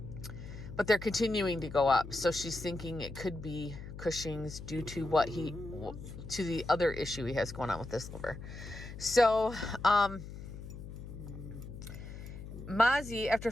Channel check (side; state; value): left; noise; hum, 11 dB below the sound